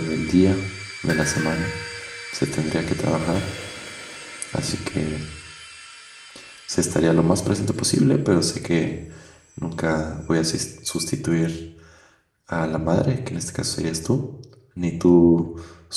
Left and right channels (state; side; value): identical; both; correlation 1.00